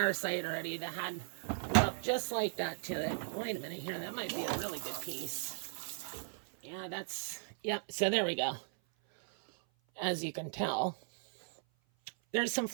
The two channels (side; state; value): left; silent; 53 dB below the other